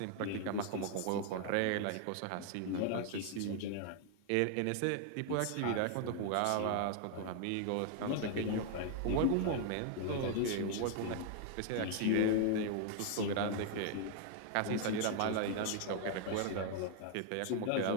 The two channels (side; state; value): both; different; correlation 0.00